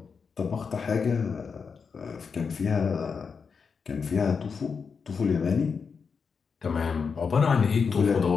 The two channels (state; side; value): quieter; right; 5.6 dB